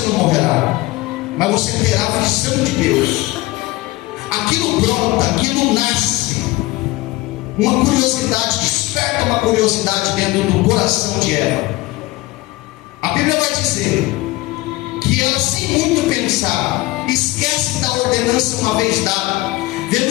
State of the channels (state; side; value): quieter; right; 19.9 dB